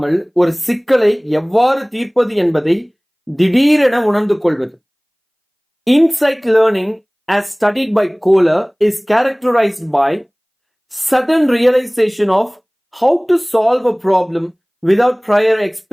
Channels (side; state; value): both; identical; correlation 1.00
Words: ஒரு சிக்கலை எவ்வாறு தீர்ப்பது என்பதை திடீரென உணர்ந்து கொள்வது. Insight learning as studied by Kohler is characterized by sudden realization of how to solve a problem without prior